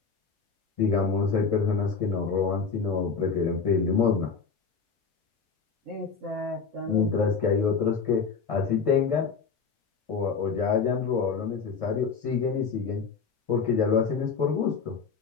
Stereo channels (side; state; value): right; quieter; 5.4 dB